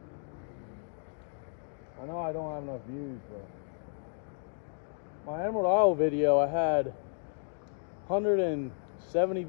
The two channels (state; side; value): silent; right; digital silence